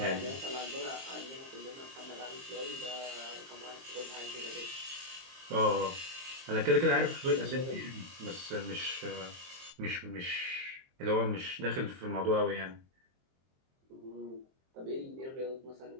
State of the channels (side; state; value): left; late; 23 ms